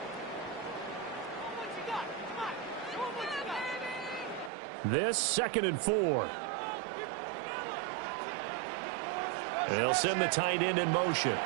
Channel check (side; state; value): left; drops out; at 4.5 s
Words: This 2nd and 4. They'll send the tight end in motion.